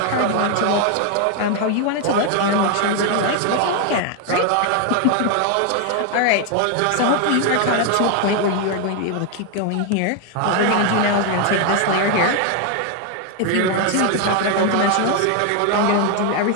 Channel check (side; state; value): both; different; correlation 0.01